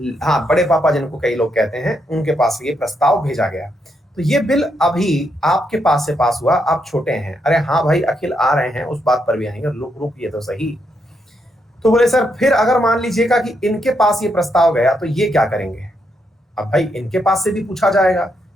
हाँ, बड़े पापा जिनको कई लोग कहते हैं, उनके पास ये प्रस्ताव भेजा गया। तो ये बिल अभी आपके पास से पास हुआ, आप छोटे हैं। अरे हाँ भाई, अखिल आ रहे हैं, उस बात पर भी आएंगे, रुकिए तो सही। तो बोले सर फिर अगर मान लीजिएगा कि इनके पास ये प्रस्ताव गया तो ये क्या करेंगे? अब भाई इनके पास से भी पूछा जाएगा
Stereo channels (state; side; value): normal; both; correlation 0.79